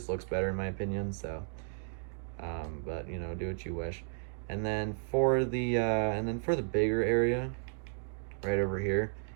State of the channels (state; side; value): silent; left; digital silence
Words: looks better in my opinion, so, but, you know, do what you wish. And then for the bigger area, right over here,